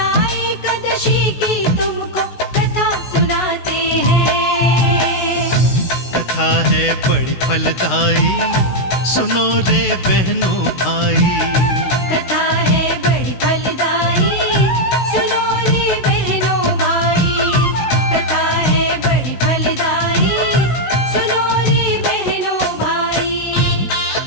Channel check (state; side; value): late; right; 16 ms